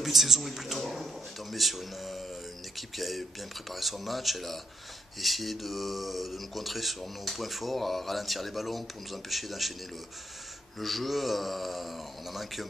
de saison est plutôt bon. On est tombé sur une équipe qui avait bien préparé son match. Elle a essayé de nous contrer sur nos points forts, à ralentir les ballons pour nous empêcher d'enchaîner le jeu. On a manqué un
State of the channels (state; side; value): normal; both; correlation 0.74